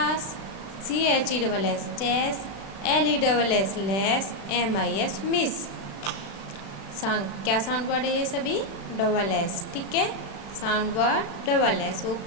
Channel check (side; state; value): right; late; 36 ms